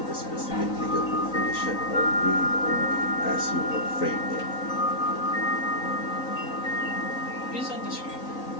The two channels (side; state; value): right; late; 3.9 ms